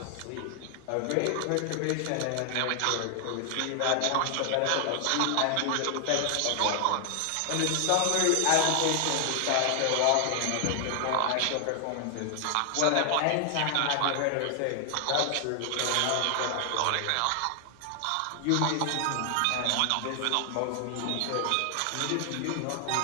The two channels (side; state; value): both; different; correlation 0.00